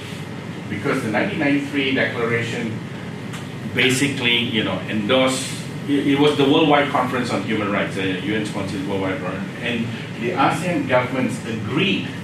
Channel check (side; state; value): both; identical; correlation 1.00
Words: Because the 1993 declaration basically, endorsed, it was the Worldwide Conference on Human Rights, the UN-sponsored Worldwide Conference, and the ASEAN governments agreed